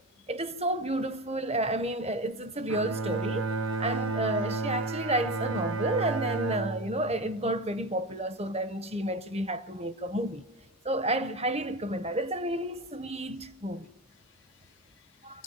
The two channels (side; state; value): both; normal; correlation 0.25